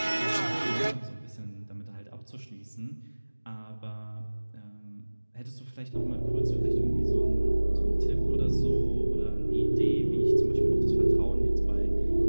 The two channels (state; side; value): inverted; both; correlation -1.00